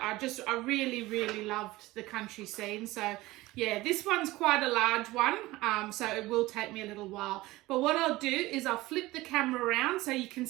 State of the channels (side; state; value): left; quieter; 19.0 dB